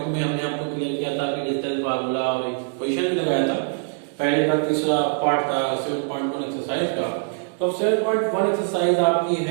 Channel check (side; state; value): left; silent; digital silence